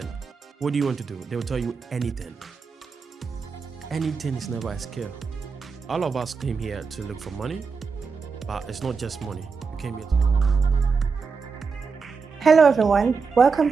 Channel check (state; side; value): quieter; left; 5.2 dB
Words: What do you want to do? They will tell you anything. Anything is never a skill. All of us came here to look for money, but it's not just money. We came here Hello everyone, welcome